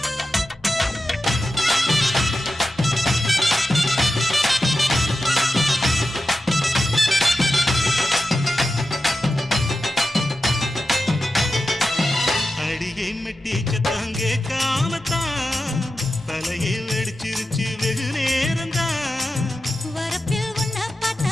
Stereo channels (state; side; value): normal; both; correlation 0.92